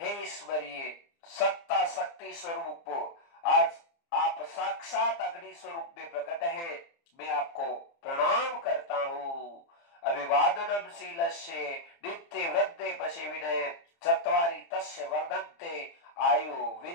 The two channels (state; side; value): late; right; 30 ms